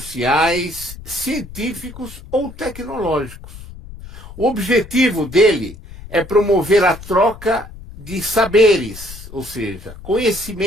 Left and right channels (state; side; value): noise; left; rumble, 15 dB below the sound